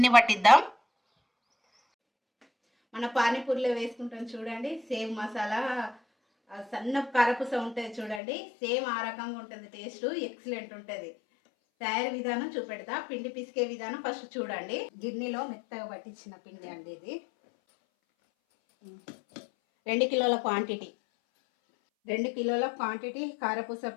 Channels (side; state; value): right; drops out; at 8.2 s